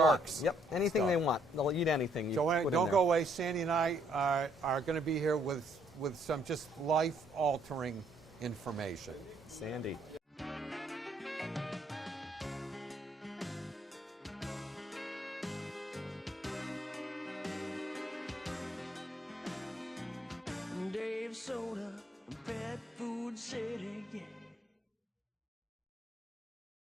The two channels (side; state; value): both; normal; correlation 0.68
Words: want. Yep, anything stuff. they want. They'll eat anything. You Joanne, put in don't there. go away. Sandy and I are going to be here with some just life-altering information. Sandy. Dave Soda, Pet Food City, yeah.